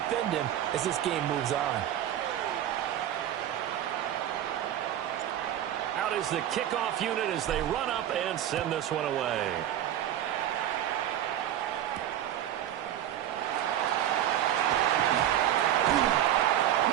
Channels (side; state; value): left; quieter; 11.5 dB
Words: him as this game moves on. Out is the kickoff unit as they run up and send this one away.